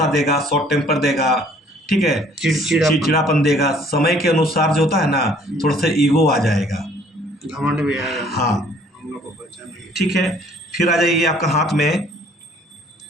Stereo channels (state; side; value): normal; both; correlation 0.58